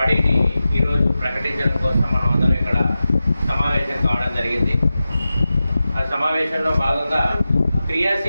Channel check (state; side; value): inverted; both; correlation -0.94